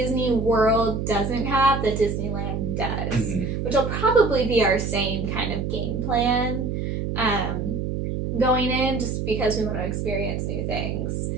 World doesn't have that Disneyland does, which will probably be our same kind of game plan going in, just because we want to experience new things.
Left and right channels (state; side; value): noise; right; hum, 2 dB below the sound